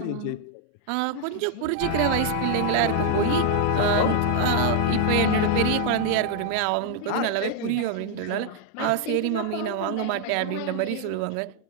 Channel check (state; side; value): different; both; correlation 0.00